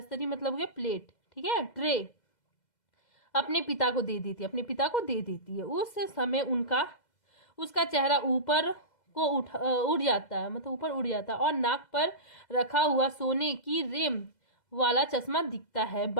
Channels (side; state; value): right; late; 2.0 ms